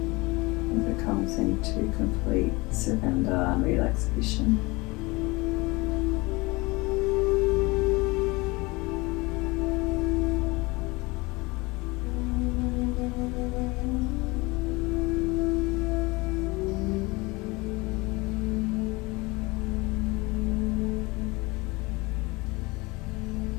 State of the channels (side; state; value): right; quieter; 24.3 dB